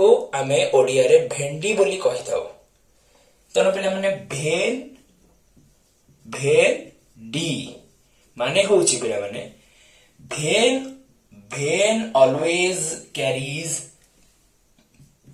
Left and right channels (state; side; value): identical; both; correlation 1.00